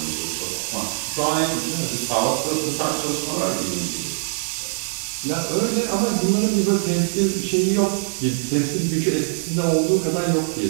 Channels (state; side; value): silent; left; digital silence